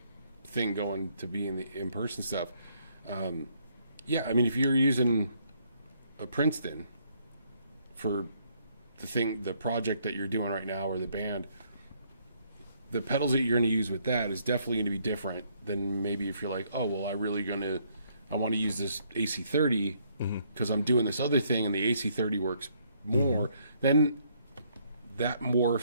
thing going to be in the in-person stuff. Yeah, I mean, if you're using a Princeton for the project that you're doing right now, or the band, the pedals that you're going to use with that is definitely going to be different than maybe if you're like, oh, well, I want to use this AC30 because I'm doing this other thing and the AC30 works more. Then that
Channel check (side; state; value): both; inverted; correlation -0.69